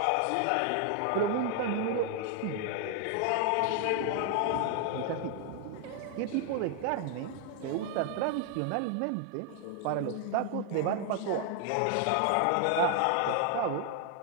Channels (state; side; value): different; both; correlation 0.00